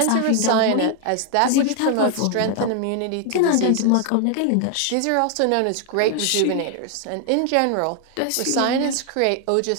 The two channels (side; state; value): both; different; correlation 0.00